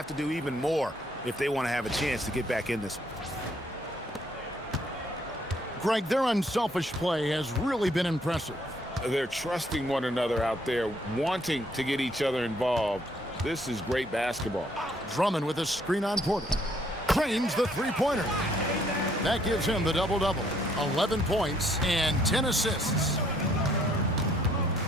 to do even more if they want to have a chance to get back in this one. Greg, their unselfish play has really been impressive. They're trusting one another out there, wanting to get each other involved. This is great basketball. Drummond with a screen on Porter. Trains the three-pointer. That gives him the double-double. 11 points and 10 assists.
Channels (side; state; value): both; normal; correlation 0.66